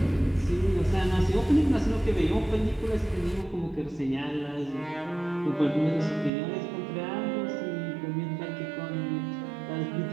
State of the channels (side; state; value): left; drops out; at 6.3 s